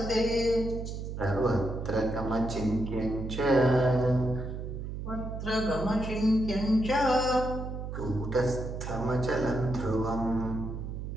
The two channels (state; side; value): noise; right; hum, 6 dB below the sound